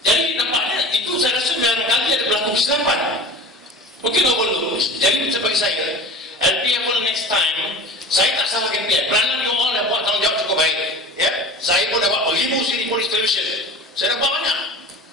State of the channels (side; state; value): both; normal; correlation 0.36